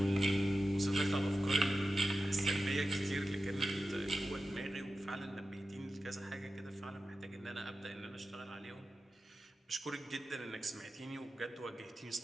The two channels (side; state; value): both; normal; correlation 0.93